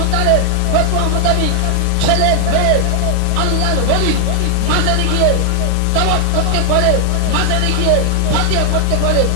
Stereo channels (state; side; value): different; both; correlation 0.00